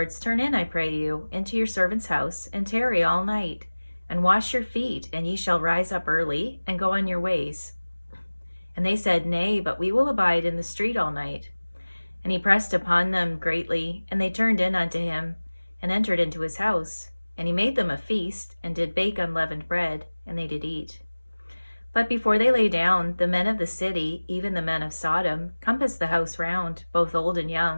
turn in, I pray you, into your servant's house, and tarry all night, and wash your feet, and ye shall rise up early, and go on your ways. And they said, Nay, but we will abide in the street all night. And he pressed upon them greatly, and they turned in unto him, and entered into his house. And he made them a feast, and did bake unleavened bread, and they did eat. But before they lay down, the men of the city, even the men of Sodom, compassed the house round, both old and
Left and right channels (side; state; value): both; inverted; correlation -1.00